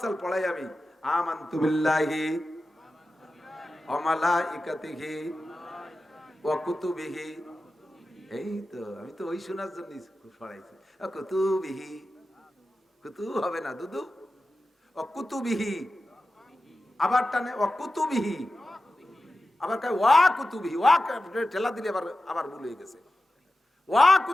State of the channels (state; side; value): normal; both; correlation 0.93